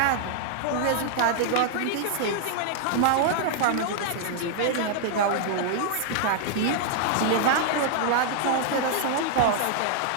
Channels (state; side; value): different; both; correlation -0.01